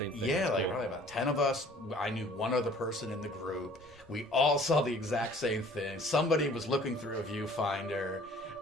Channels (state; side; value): normal; both; correlation 0.52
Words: thing. Yeah, like probably about 10 of us. I knew one other person in the group. We all saw the exact same thing. Somebody was looking through a viewfinder.